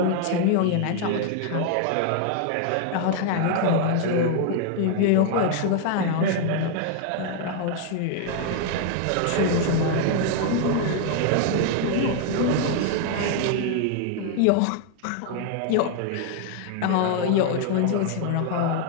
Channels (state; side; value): different; both; correlation 0.00